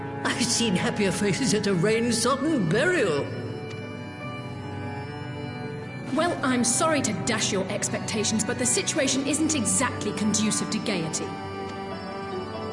I've seen happier faces at a rain-sodden burial. Well, I'm sorry to dash your expectations, but the situation isn't exactly conducive to gaiety.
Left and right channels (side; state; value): both; identical; correlation 1.00